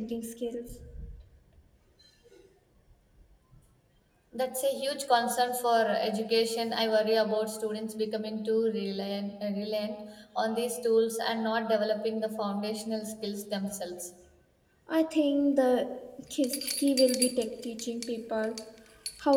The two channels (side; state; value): both; identical; correlation 1.00